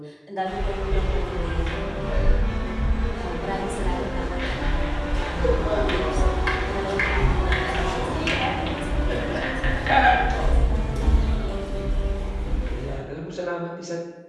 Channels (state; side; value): identical; both; correlation 1.00